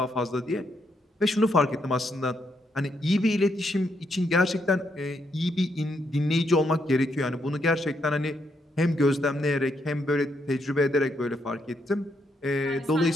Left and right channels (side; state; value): both; normal; correlation 0.77